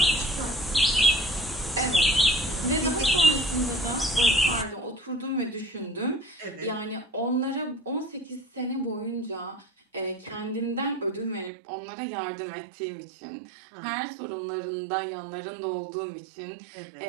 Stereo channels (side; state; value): left; drops out; at 11.5 s